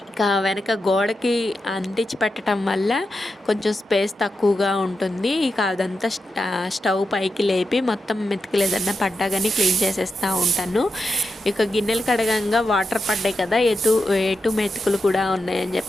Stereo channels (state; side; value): normal; both; correlation 0.88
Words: ఇక వెనక గోడకి అంటించి పెట్టడం వల్ల కొంచెం స్పేస్ తక్కువగా ఉంటుంది. ఇక అదంతా స్టవ్ పైకి లేపి మొత్తం మెతుకులు ఏదన్నా పడ్డా కానీ క్లీన్ చేసేస్తూ ఉంటాను. ఇక గిన్నెలు కడగంగా వాటర్ పడ్డాయి కదా, ఎటు మెతుకులు కూడా ఉన్నాయని